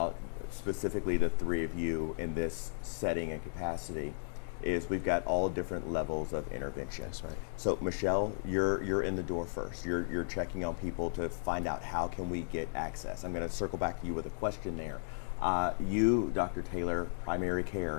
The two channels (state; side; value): silent; right; digital silence